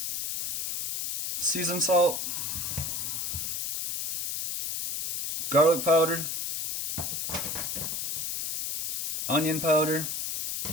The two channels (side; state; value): left; noise; hiss, 3 dB below the sound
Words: seasoned salt, garlic powder, onion powder,